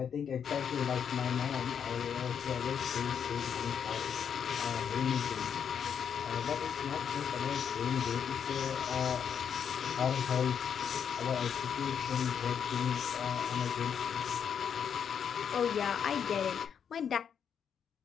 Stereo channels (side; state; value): right; quieter; 7.7 dB